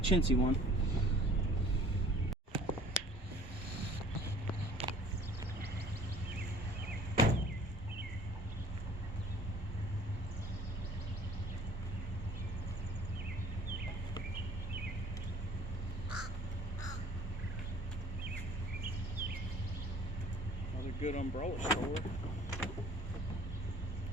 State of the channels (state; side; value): normal; both; correlation 0.51